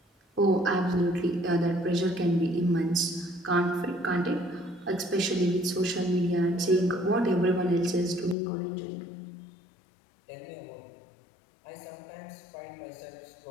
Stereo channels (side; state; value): right; drops out; at 8.3 s